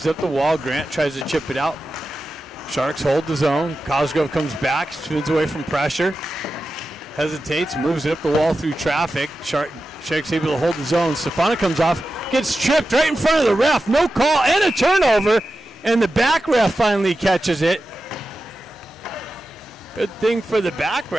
up the wall. Grant tries to chip it out. Sharks hold the zone. Cosgrove comes back. Spins away from pressure. Hesitates. Moves it up the wall through traffic. Sharks able to hold the zone. Stefano comes off. Gets tripped right in front of the ref. No call and a turnover. And the back ref finally catches it. Good thing for the back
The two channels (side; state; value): both; normal; correlation 0.92